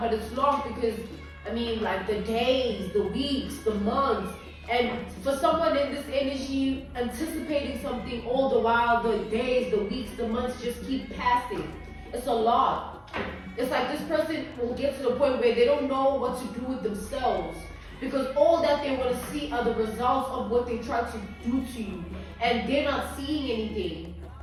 but it's long because, I mean, like the days, the weeks, the months, and for someone in this energy anticipating something all the while, the days, the weeks, the months just keep passing. It's a lot. It's like this person will get to the point where they don't know what to do with themselves, because all that they want to see are the results of what they try to do to you, and they're not seeing anything.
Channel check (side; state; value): both; identical; correlation 1.00